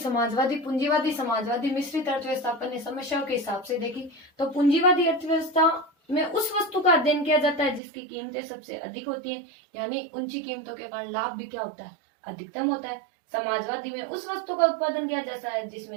मिश्रित अर्थव्यवस्था। अपन ने समस्याओं के हिसाब से देखी। तो पूंजीवादी अर्थव्यवस्था में उस वस्तु का अध्ययन किया जाता है जिसकी कीमतें सबसे अधिक होती हैं, यानी ऊंची कीमतों के कारण लाभ भी क्या होता है, अधिकतम होता है। समाजवादी में उस वस्तु का उत्पादन किया जाता है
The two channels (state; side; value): drops out; left; at 7.8 s